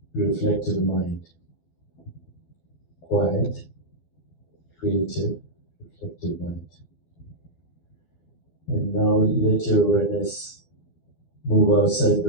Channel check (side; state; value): right; late; 12 ms